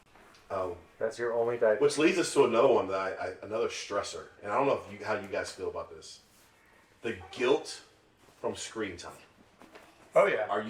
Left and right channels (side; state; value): both; identical; correlation 1.00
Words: That's your only diaper. Which leads us to another one that another stressor, and I don't know how you guys feel about this. The guilt from screen time. Oh yeah. Are